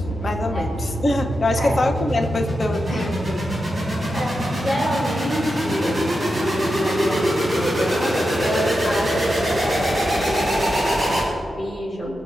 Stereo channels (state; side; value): normal; both; correlation 0.88